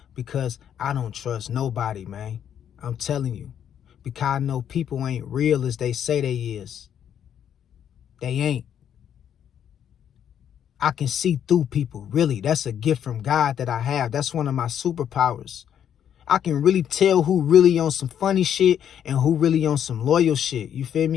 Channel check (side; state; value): right; quieter; 9.3 dB